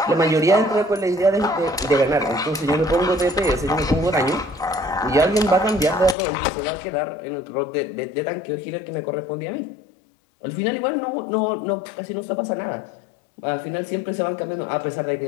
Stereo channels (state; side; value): drops out; right; at 6.2 s